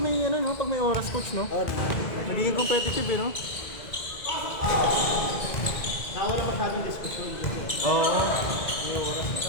may ano, no? Pag may oras, coach, no? Magiging competitive, eh, no? Nawala pa sa ating diskusyon. Oo. May oras.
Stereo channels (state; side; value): late; right; 2.0 ms